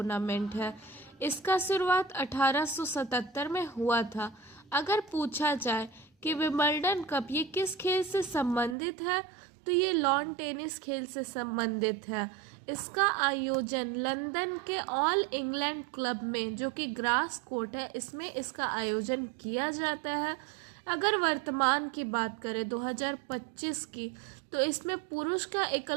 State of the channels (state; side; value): drops out; left; at 8.8 s